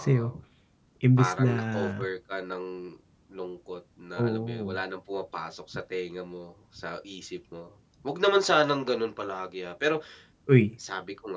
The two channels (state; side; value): identical; both; correlation 1.00